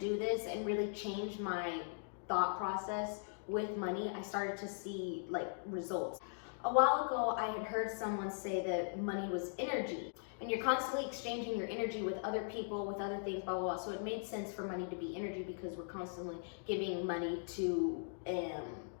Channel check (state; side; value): silent; right; digital silence